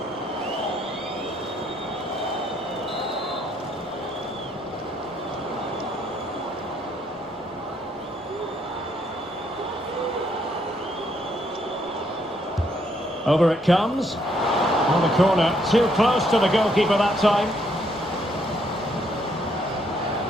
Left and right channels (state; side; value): normal; both; correlation 0.71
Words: Over it comes. On the corner, too close to the goalkeeper that time.